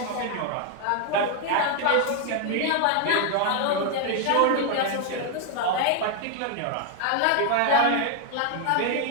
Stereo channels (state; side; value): different; both; correlation 0.00